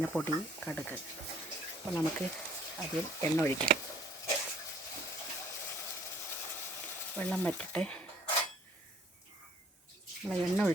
കടുക്. അപ്പോൾ നമുക്ക് അതിൽ എണ്ണ ഒഴിക്കാം. വെള്ളം വറ്റട്ടെ. നമ്മൾ എണ്ണ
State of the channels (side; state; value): both; normal; correlation 0.58